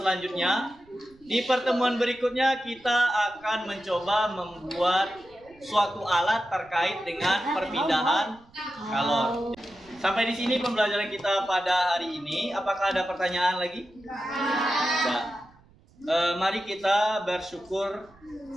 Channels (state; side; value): noise; right; rumble, 28 dB below the sound